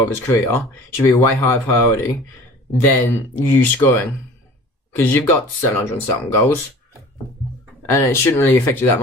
of his career should be a way higher priority than you scoring. Because you've got 700 and something goals, and it shouldn't really affect you that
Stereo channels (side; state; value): both; normal; correlation 0.44